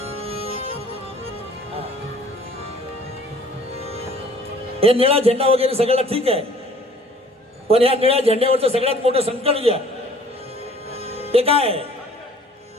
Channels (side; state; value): both; normal; correlation 0.53